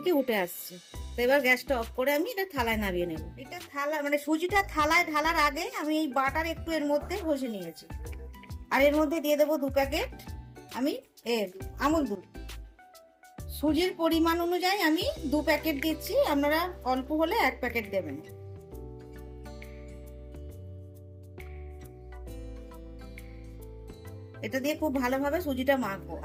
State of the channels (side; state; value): both; identical; correlation 1.00